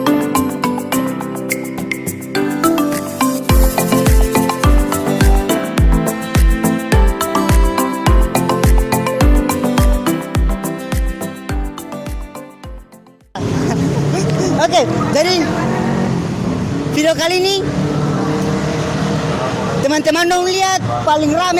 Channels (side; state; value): both; identical; correlation 1.00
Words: Oke, jadi video kali ini teman-teman dong lihat paling